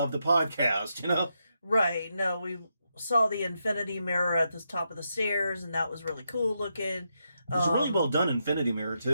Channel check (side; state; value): both; inverted; correlation -0.83